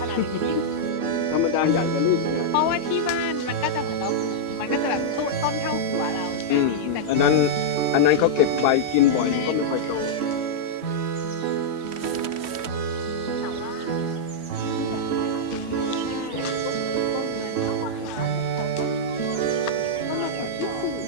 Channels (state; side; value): late; left; 3.1 ms